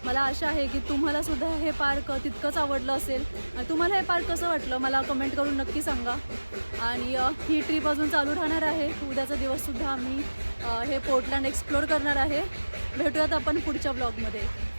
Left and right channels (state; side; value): inverted; both; correlation -1.00